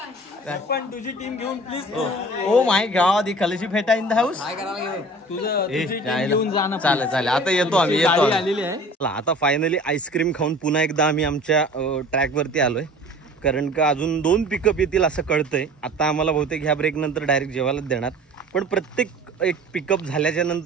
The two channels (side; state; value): both; normal; correlation 0.44